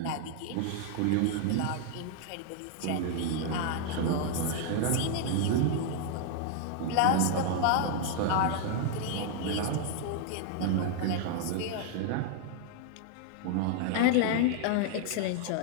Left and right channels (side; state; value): both; different; correlation 0.00